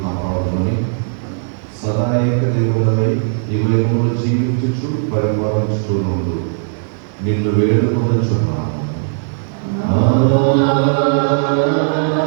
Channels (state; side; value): silent; left; digital silence